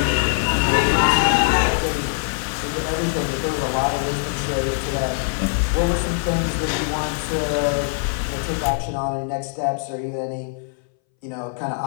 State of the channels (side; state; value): right; silent; 62 dB below the other